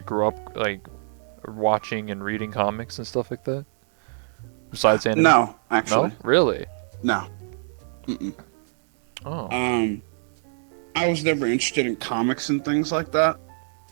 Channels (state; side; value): silent; left; digital silence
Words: grow up like watching and reading comics and stuff like that? Besides anime? No, actually, No, really? no. Mm-mm. Oh, Um, I was never interested in comics and things like that.